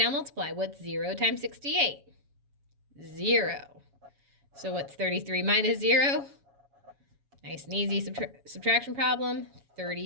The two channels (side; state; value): left; late; 7.2 ms